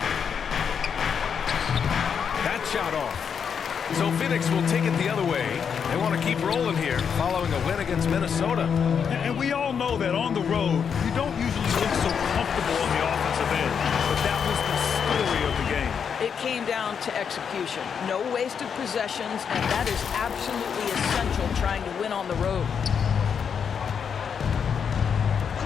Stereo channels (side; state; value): right; quieter; 7.0 dB